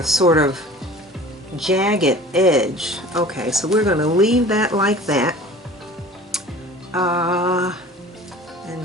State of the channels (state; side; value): normal; both; correlation 0.43